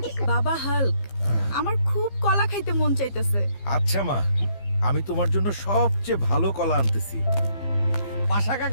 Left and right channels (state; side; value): late; right; 15 ms